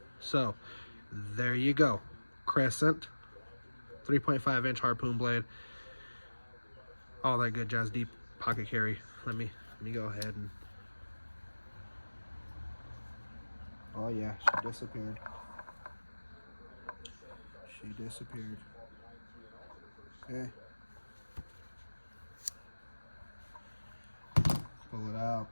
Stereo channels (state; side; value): inverted; both; correlation -1.00